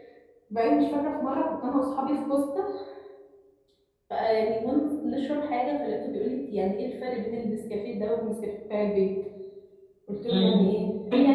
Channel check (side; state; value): both; identical; correlation 1.00